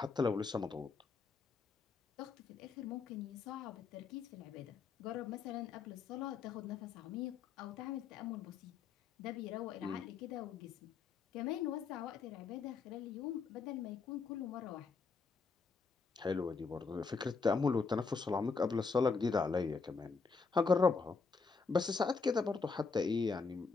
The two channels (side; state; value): right; quieter; 4.7 dB